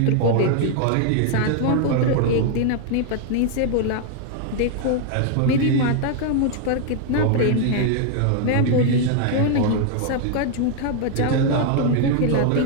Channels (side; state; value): both; different; correlation 0.00